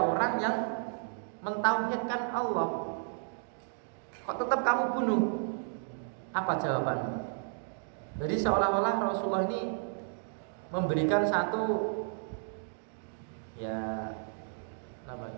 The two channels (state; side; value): silent; left; digital silence